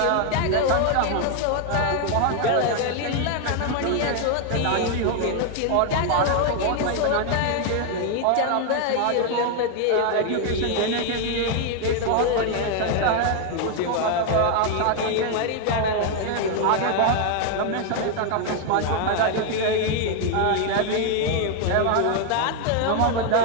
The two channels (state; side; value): different; both; correlation 0.00